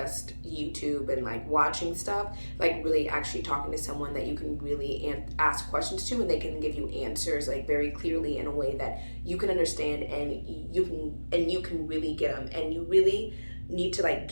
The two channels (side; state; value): both; inverted; correlation -1.00